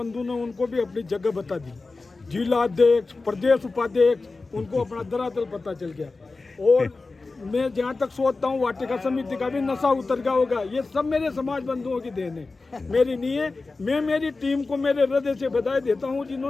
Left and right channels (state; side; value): quieter; right; 3.7 dB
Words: ने उनको भी अपनी जगह बता दी। जिला अध्यक्ष, प्रदेश उपाध्यक्ष, उनको अपना धरातल पता चल गया। और मैं जहाँ तक सोचता हूँ वाटिका समिति का भी नशा उतर गया होगा। ये सब मेरे समाज बंधुओं की देन है, मेरी नहीं है। मैं मेरी टीम को मेरे हृदय से बधाई देता हूँ